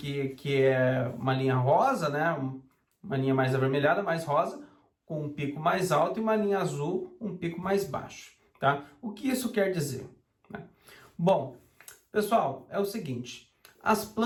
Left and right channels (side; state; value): both; identical; correlation 1.00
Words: que é uma linha rosa, né? Uma linha mais avermelhada, mais rosa, com um pico mais alto, e uma linha azul, um pico mais baixo. Tá? O que isso quer dizer? Né? Bom, pessoal, é o seguinte. As